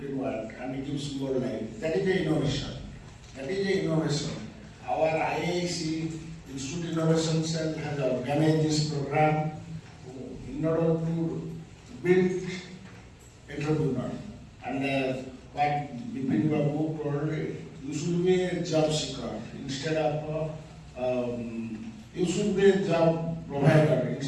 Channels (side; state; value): both; identical; correlation 1.00